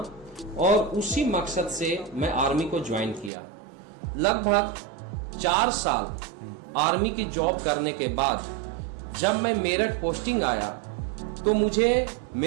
और उसी मकसद से मैं आर्मी को ज्वाइन किया। लगभग 4 साल आर्मी की जॉब करने के बाद जब मैं मेरठ पोस्टिंग आया तो मुझे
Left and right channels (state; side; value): drops out; left; at 3.3 s